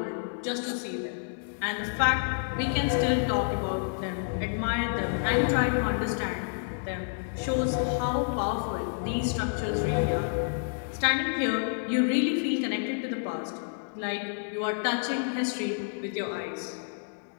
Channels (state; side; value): silent; right; digital silence